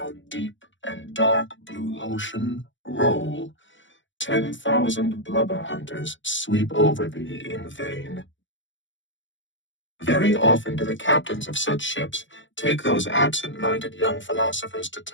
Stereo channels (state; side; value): late; right; 0.55 ms